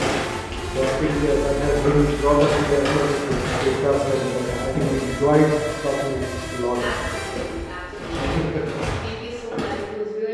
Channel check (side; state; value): both; identical; correlation 1.00